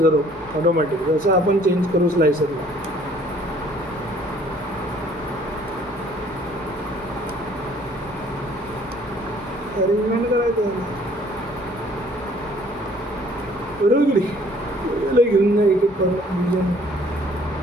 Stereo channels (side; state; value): both; normal; correlation 0.58